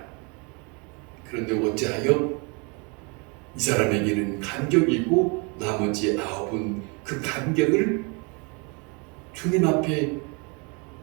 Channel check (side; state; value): left; quieter; 32.1 dB